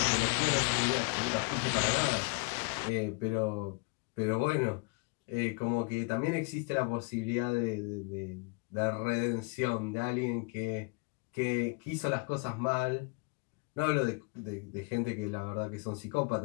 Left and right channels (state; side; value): quieter; right; 31.0 dB